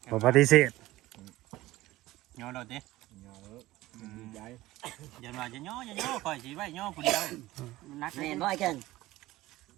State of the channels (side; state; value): left; quieter; 17.4 dB